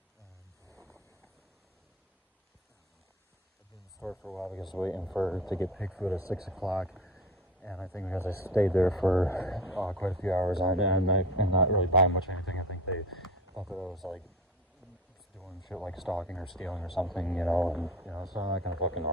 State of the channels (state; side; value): normal; both; correlation 0.32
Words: because waiting to get pig food at 6 o'clock, And I think because I stayed there for quite a few hours on end and not really buying much of anything, I think they thought that I was like doing shit like stalking or stealing or something, you know. And you know, so I'm not gonna fucking